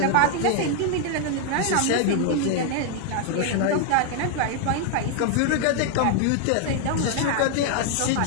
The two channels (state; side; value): different; both; correlation 0.00